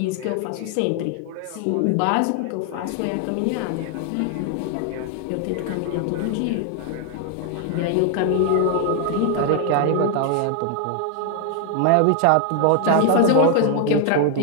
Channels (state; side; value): different; both; correlation 0.00